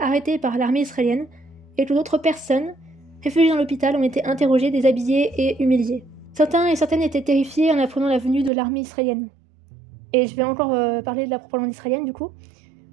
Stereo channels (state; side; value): drops out; left; at 8.5 s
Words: par l'armée israélienne et que d'autres personnes, réfugiées dans l'hôpital, ont été interrogées, déshabillées et humiliées. Certains et certaines étaient terrifiés en apprenant la venue de l'armée israélienne. Et je vais encore parler de la propagande israélienne du coup.